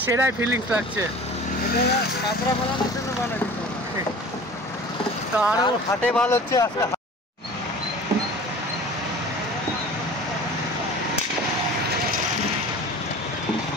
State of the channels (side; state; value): both; normal; correlation 0.41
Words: সেরাই ফিলিংস লাগছে। তো আরো হাটে ভালো হচ্ছে আজকে।